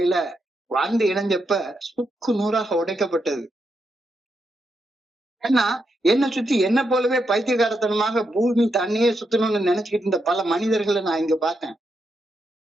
வந்து இணைஞ்சப்ப சுக்கு நூறாக உடைக்கப்பட்டது. ஏன்னா என்ன சுத்தி என்ன போலவே பைத்தியகாரத்தனமாக பூமி தண்ணியே சுத்தணும்னு நினைச்சுக்கிட்டு இருந்த பல மனிதர்களை நான் இங்க பார்த்தேன்.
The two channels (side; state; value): both; normal; correlation 0.83